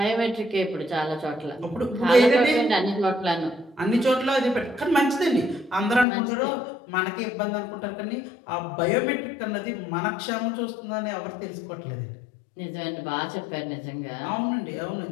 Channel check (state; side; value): drops out; right; at 6.1 s